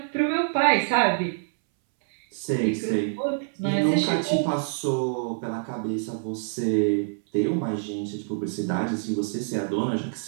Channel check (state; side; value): silent; left; 61 dB below the other